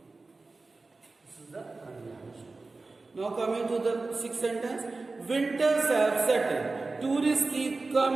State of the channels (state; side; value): quieter; left; 3.6 dB